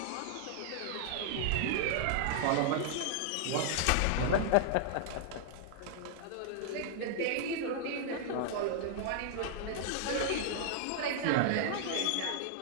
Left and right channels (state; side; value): different; both; correlation -0.01